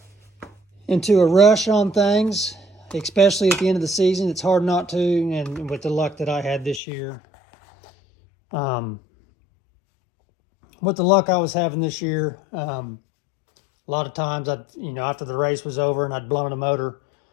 rush on things, especially at the end of the season. It's hard not to, and with the luck that I had this year, with the luck I was having this year, a lot of times after the race was over and I'd blown a motor,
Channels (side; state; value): right; drops out; at 6.8 s